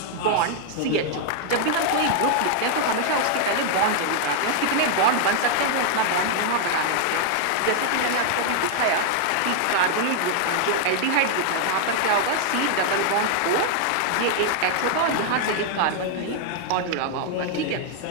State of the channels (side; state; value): both; different; correlation 0.00